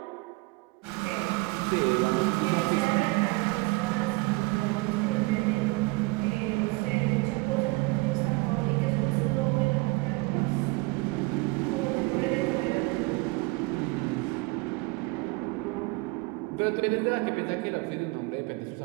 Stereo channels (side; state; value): left; quieter; 25.0 dB